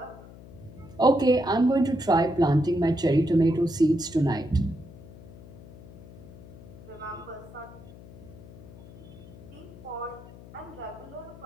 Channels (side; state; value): left; noise; hum, 18 dB below the sound